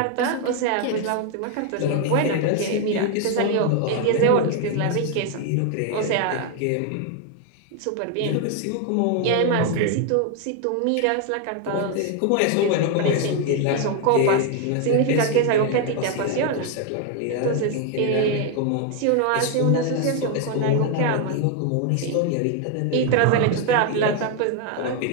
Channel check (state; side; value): different; both; correlation 0.01